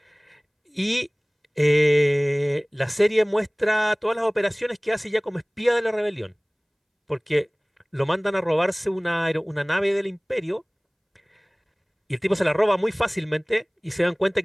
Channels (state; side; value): identical; both; correlation 1.00